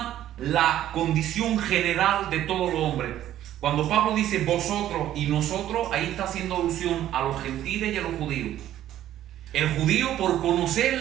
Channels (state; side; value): quieter; left; 12.4 dB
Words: la condición general de todos los hombres. Cuando Pablo dice vosotros y nosotros, ahí está haciendo alusión a los gentiles y a los judíos. El judío, por conocer